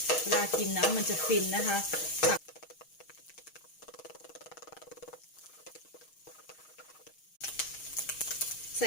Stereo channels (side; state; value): right; late; 6.4 ms